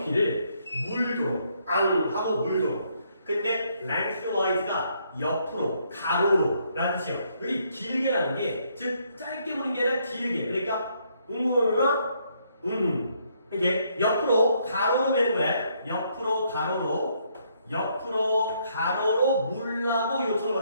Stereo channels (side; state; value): both; inverted; correlation -0.71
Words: 물도록 하고 물도록. 근데 lengthwise가 옆으로 가로로 라는 뜻이에요. 여기 길게라는 게 즉 짧게 보는 게 아니라 길게. 그러니까 이게 옆으로 가로로 매는 거야. 옆으로 가로로 물라고 요청을